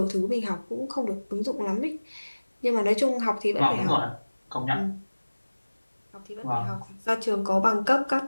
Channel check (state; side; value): inverted; both; correlation -1.00